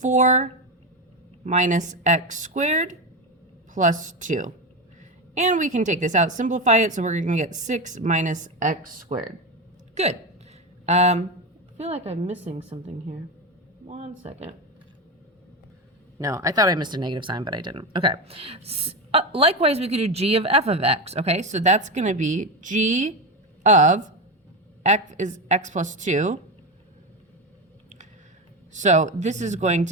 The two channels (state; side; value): normal; both; correlation 0.16